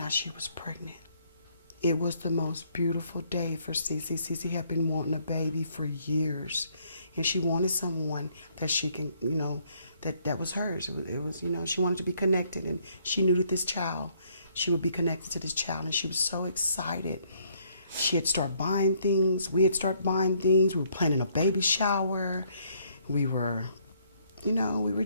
out she was pregnant. It was the most beautiful day for Cece. Cece had been wanting a baby for years, and she wanted someone that she can, that was hers. It was, she wanted to be connected, and she knew that this child, she would be connected to this child, and she was so excited. She had started buying things. We had started buying things. We were planning a baby shower. We were, we were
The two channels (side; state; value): both; inverted; correlation -0.68